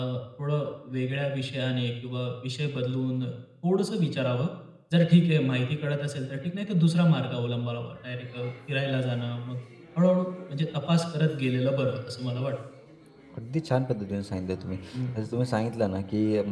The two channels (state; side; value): identical; both; correlation 1.00